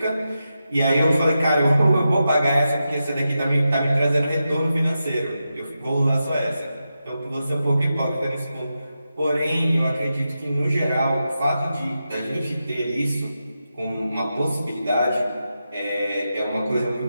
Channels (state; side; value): inverted; both; correlation -0.89